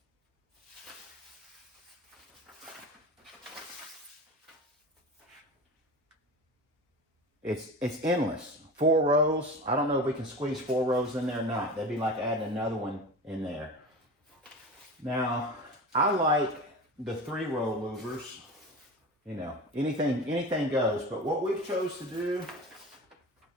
It's endless. 4 rows. I don't know if we can squeeze 4 rows in there or not. That'd be like adding another one in there. Now, I like the 3-row louvers. You know, anything goes. But what we've chose to do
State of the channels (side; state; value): both; normal; correlation 0.31